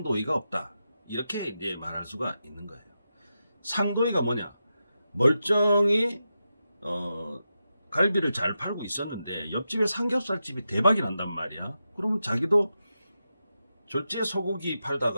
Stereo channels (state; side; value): inverted; both; correlation -0.89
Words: 없다, 이렇게 이제 말할 수가 있는 거예요. 상도의가 뭐냐? 멀쩡히 갈비를 잘 팔고 있었는데 옆집에 삼겹살집이 대박이 난단 말이야. 그러면 자기도 졸지에 소고기